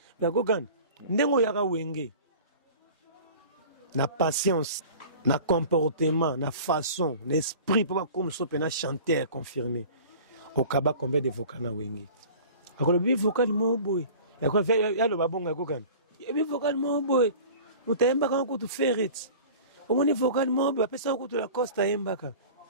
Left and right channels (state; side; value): inverted; both; correlation -0.41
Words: ga gogan ndengo ya ka wenge na patience na comportement na façon l'esprit pour comme so pena chanter confirmé au kaba combien de vocaux na wenge akolo bi vocal mo boy ya kwa fait ya lo babonga kokana bi vocalement boy utaemba quand tu ferret au moins vocalement boy pesa ko tu la costa embaka